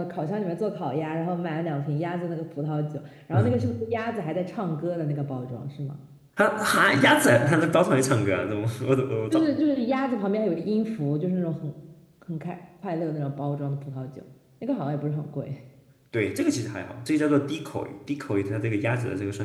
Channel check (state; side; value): identical; both; correlation 1.00